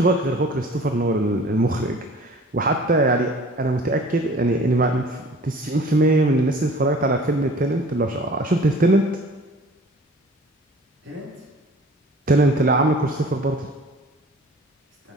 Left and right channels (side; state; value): both; normal; correlation 0.47